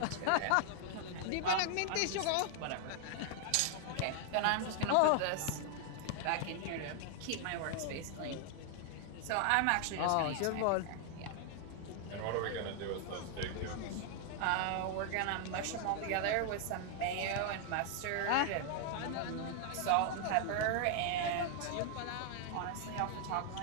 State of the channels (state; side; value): different; both; correlation 0.00